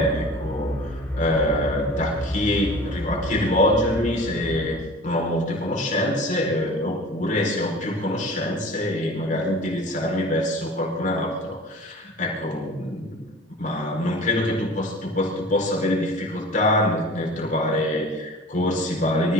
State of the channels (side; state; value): both; normal; correlation 0.41